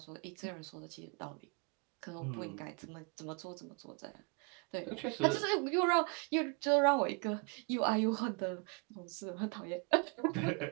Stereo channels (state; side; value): quieter; left; 32.2 dB